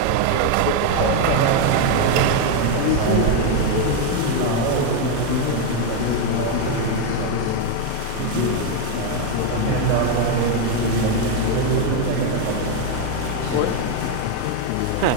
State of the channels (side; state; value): both; different; correlation 0.01